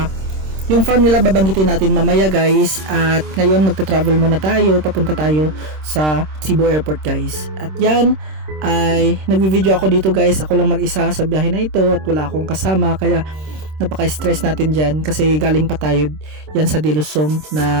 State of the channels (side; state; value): left; late; 26 ms